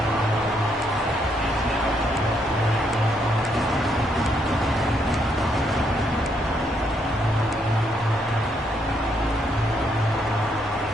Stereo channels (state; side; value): normal; both; correlation 0.74